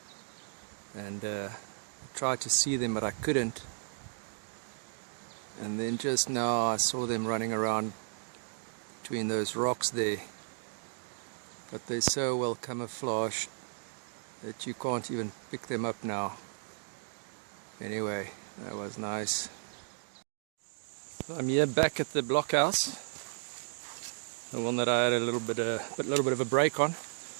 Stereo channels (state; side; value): silent; left; digital silence